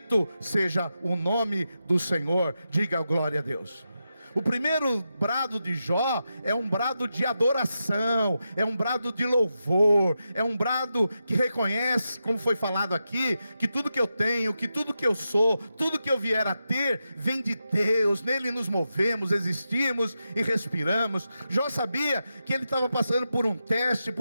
seja o nome do Senhor. Diga glória a Deus. O primeiro brado de Jó é um brado de adoração, é um brado de louvor, é um brado que reconhece, como foi falado aqui, que tudo que eu tenho, que tudo que eu sou, tudo que eu vier a ter, vem de Deus. Nele nos movemos, existimos e respiramos. Jó sabia que ele estava passando por um teste,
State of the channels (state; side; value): inverted; both; correlation -0.88